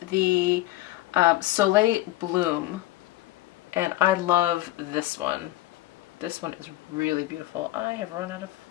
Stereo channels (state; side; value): quieter; right; 16.4 dB